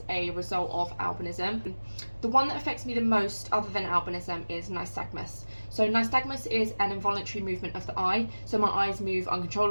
a result of albinism. The one that affects me the most, other than albinism, is nystagmus. So nystagmus is an involuntary movement of the eye. So my eyes move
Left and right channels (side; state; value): both; inverted; correlation -1.00